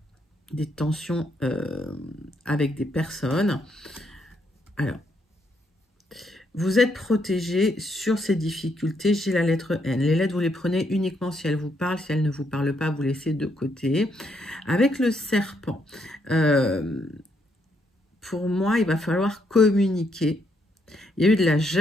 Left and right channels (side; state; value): both; normal; correlation 0.75